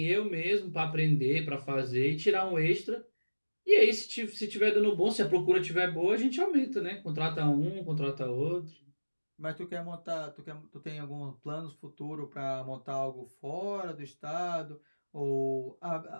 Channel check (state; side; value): inverted; both; correlation -1.00